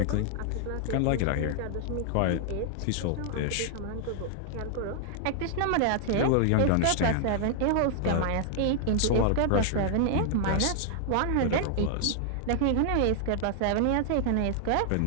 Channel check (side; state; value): both; different; correlation 0.00